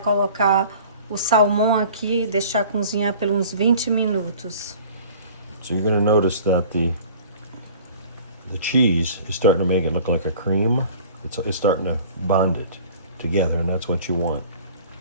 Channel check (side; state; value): both; inverted; correlation -0.47